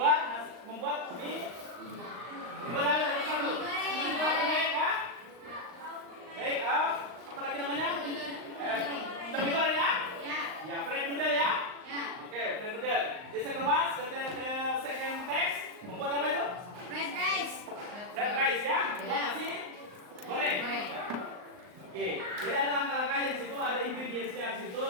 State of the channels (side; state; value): left; late; 39 ms